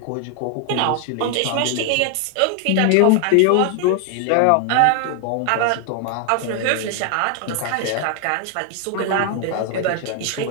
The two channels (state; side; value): different; both; correlation 0.00